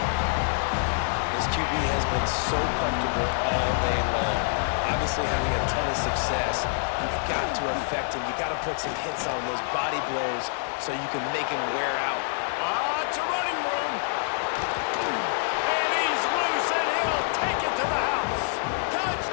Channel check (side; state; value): right; silent; digital silence